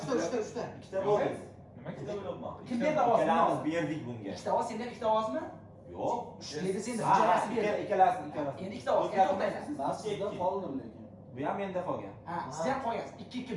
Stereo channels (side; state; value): both; identical; correlation 1.00